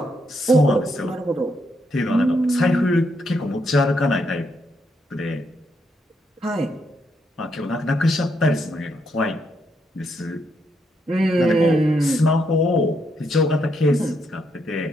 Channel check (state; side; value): normal; both; correlation 0.78